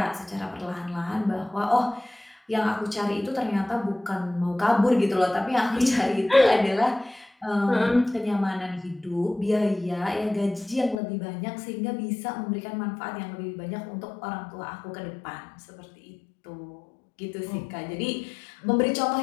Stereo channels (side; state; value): right; drops out; at 11.0 s